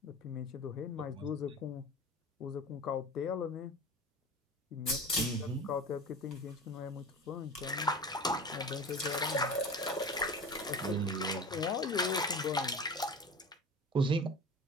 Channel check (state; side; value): normal; both; correlation 0.33